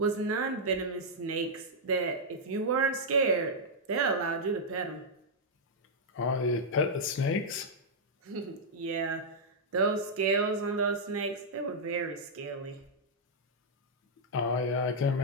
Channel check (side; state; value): both; normal; correlation -0.06